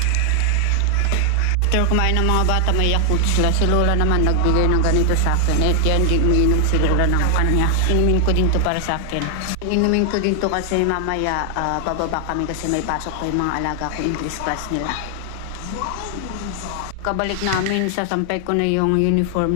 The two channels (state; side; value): different; both; correlation 0.00